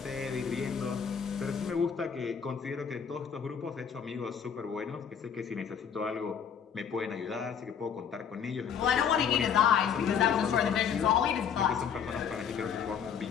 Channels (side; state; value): right; quieter; 7.5 dB